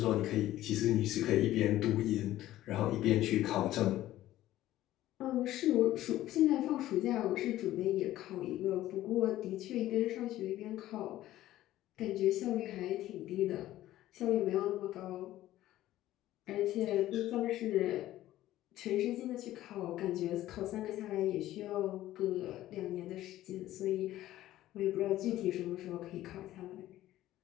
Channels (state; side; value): quieter; right; 14.5 dB